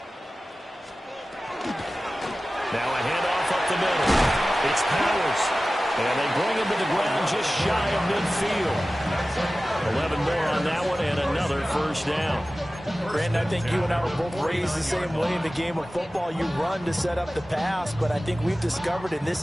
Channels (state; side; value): normal; both; correlation 0.96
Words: handoff up the middle. It's Powers. And they bring him to the ground just shy of midfield. 11 more on that one and another first down. Brandon, I think you and I were both raised the same way in the game of football. You run to set up the pass, but I think we've discovered in